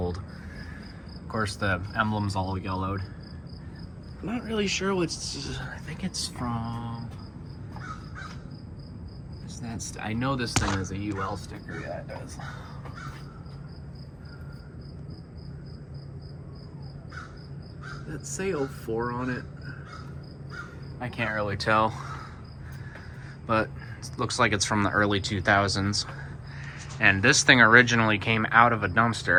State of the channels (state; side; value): identical; both; correlation 1.00